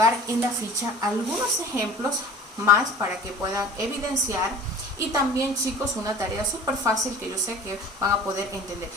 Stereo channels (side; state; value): both; normal; correlation 0.43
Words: en la ficha algunos ejemplos más para que puedan evidenciar. Y también, chicos, una tarea súper fácil que yo sé que van a poder entender.